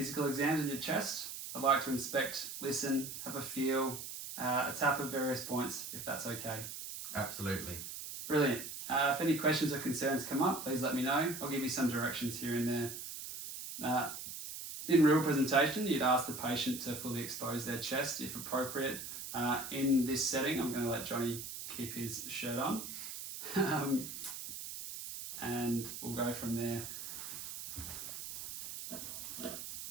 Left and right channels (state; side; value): noise; right; hiss, 8 dB below the sound